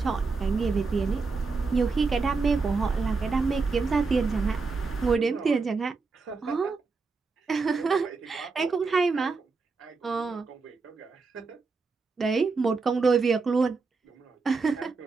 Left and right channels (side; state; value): left; quieter; 4.4 dB